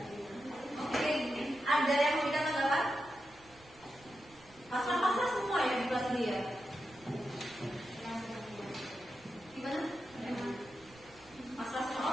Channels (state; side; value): noise; right; rumble, 25 dB below the sound